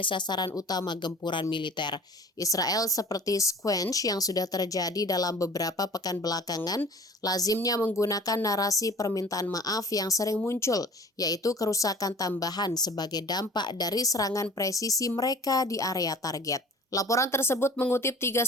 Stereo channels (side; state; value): both; normal; correlation 0.44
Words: sasaran utama gempuran militer. Israel seperti squench yang sudah terjadi dalam beberapa pekan belakangan, lazimnya menggunakan narasi permintaan maaf yang sering muncul, yaitu kerusakan tambahan sebagai dampak dari serangan presisi mereka di area target. Laporan tersebut mengutip 3